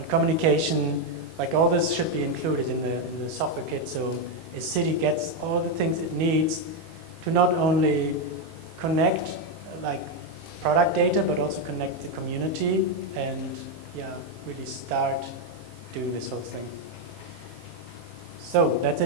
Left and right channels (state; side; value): late; left; 19 ms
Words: communication. Like all this should be included in the software kit, so a city gets all the things it needs to not only connect like product data, but also connect the community and really start doing this whole thing. So that's